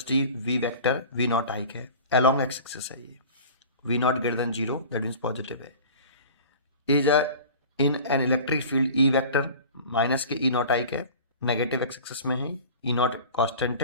v vector v naught I है along x axis है ये v naught greater than 0 that means positive है is a in an electric field E vector minus के E naught I है negative x axis में है E naught constant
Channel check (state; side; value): inverted; both; correlation -0.40